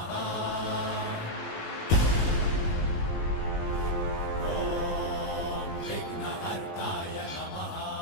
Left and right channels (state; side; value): late; right; 19 ms